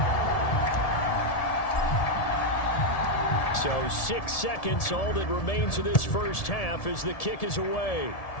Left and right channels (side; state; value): right; late; 1.7 ms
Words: So 6 seconds, all that remains of this first half as the kick is away.